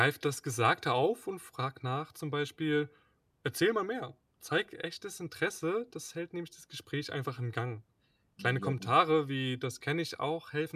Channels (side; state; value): both; identical; correlation 1.00